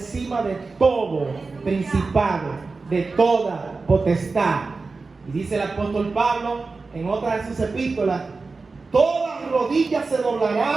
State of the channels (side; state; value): left; quieter; 4.0 dB